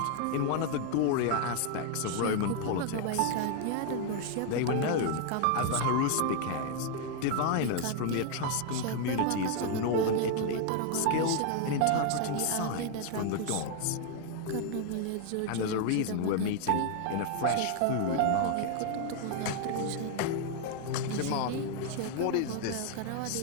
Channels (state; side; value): different; both; correlation 0.00